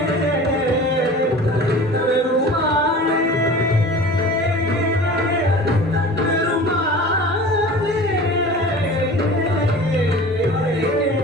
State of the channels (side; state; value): both; normal; correlation 0.40